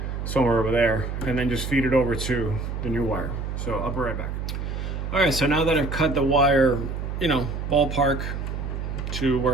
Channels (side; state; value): right; noise; hum, 4 dB below the sound